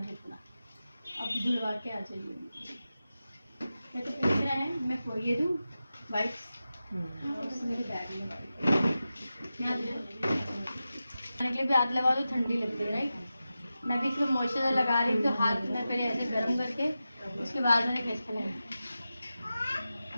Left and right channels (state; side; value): inverted; both; correlation -0.93